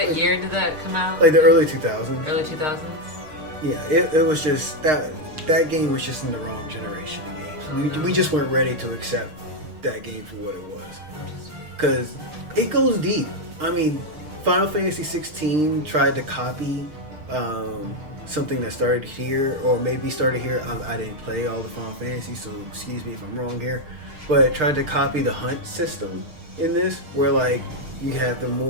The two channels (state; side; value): late; left; 6.5 ms